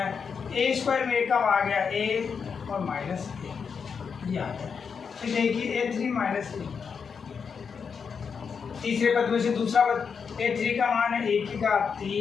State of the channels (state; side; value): quieter; right; 6.1 dB